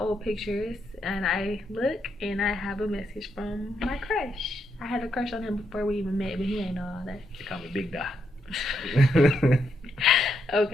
old pictures. And I look and I have a message from my crush. I had a crush on him before we even met, but he ain't know all that. They call me Big Da.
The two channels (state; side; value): normal; both; correlation 0.79